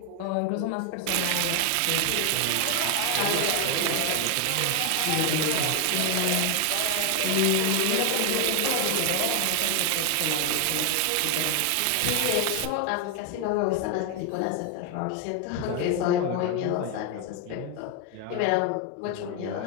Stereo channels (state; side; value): different; both; correlation 0.01